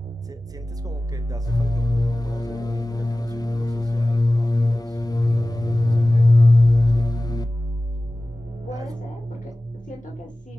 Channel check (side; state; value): both; normal; correlation 0.97